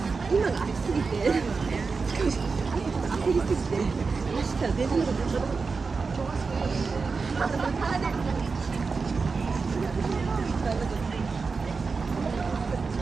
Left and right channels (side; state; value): left; quieter; 4.6 dB